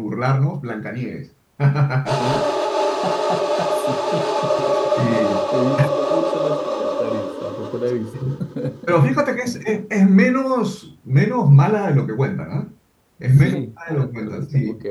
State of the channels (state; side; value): identical; both; correlation 1.00